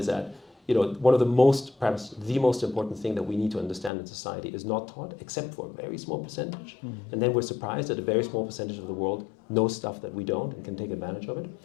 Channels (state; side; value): drops out; right; at 3.9 s